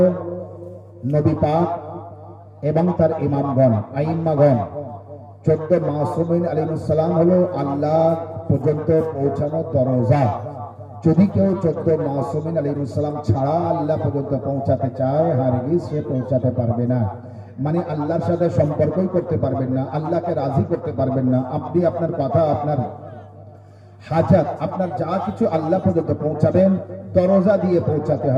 নবী পাক এবং তার ইমামগণ, আইম্মাগণ। 14 মাসুমিন আলাইহিস সালাম হলো আল্লাহ পর্যন্ত পৌঁছানোর দরজা। যদি কেউ 14 মাসুমিন আলাইহিস সালাম ছাড়া আল্লাহ পর্যন্ত পৌঁছাতে চায়, হারগিজ সে পৌঁছাতে পারবে না। মানে আল্লাহর সাথে সম্পর্কই করতে পারবেন না, আল্লাহকে রাজি করতে পারবেন না। আপনি আপনার কথা, আপনার হাজাত, আপনার যা কিছু আল্লাহ পর্যন্ত পৌঁছাবেন দরজা দিয়ে পৌঁছাতে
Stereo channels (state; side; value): identical; both; correlation 1.00